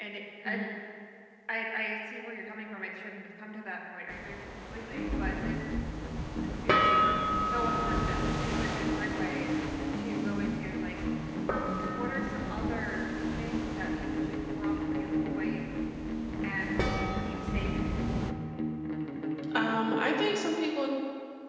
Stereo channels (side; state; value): both; identical; correlation 1.00